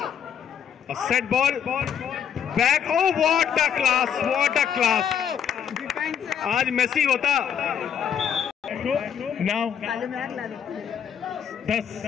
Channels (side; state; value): right; quieter; 8.3 dB